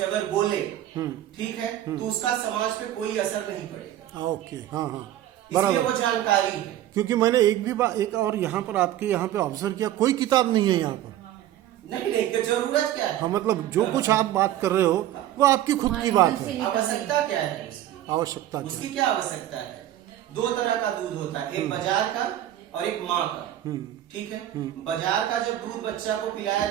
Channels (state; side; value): quieter; left; 12.7 dB